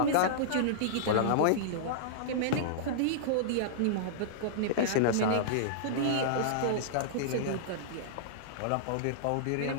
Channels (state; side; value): different; both; correlation -0.02